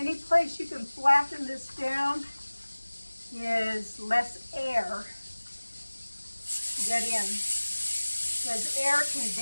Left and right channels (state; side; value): inverted; both; correlation -1.00